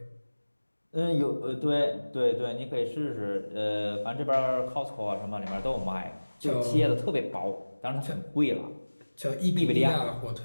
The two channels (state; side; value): inverted; both; correlation -1.00